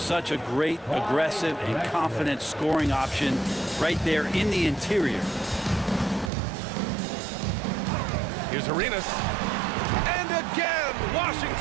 such a great, aggressive, and confident scoring option right there in the interior. Here's Arenas. And again,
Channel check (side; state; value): left; drops out; at 6.3 s